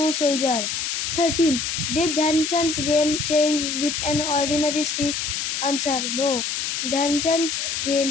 soldier. 13. Did Dhyan Chand's game change with an ordinary stick? Answer. No. Dhyan Chand's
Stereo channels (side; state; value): left; noise; hiss, 2 dB below the sound